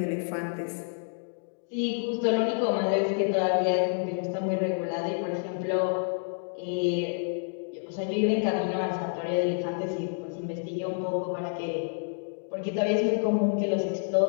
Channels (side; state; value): right; silent; digital silence